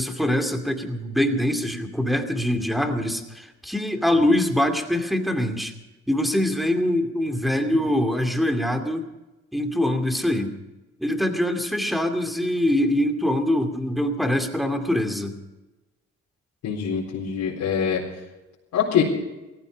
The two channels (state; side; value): normal; both; correlation 0.73